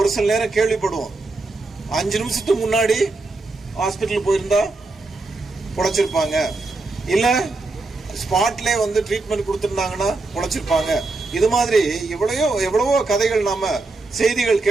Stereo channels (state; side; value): quieter; left; 3.4 dB